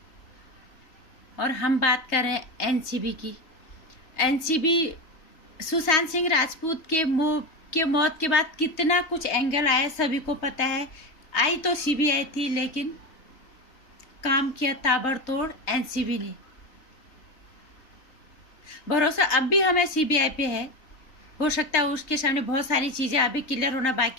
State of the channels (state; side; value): late; right; 3.2 ms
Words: और हम बात कर रहे हैं एनसीबी की। एनसीबी सुशांत सिंह राजपूत के मौत के बाद कितना कुछ एंगल आया सभी को पता है। आई तो सीबीआई थी लेकिन काम किया ताबड़तोड़ एनसीबी ने। भरोसा अब भी हमें सीबीआई पे है। हो सकता है उसके सामने बहुत सारी चीज़ें अभी क्लियर होना